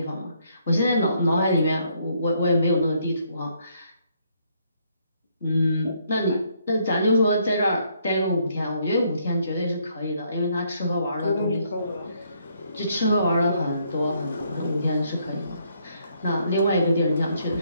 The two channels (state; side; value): inverted; both; correlation -0.71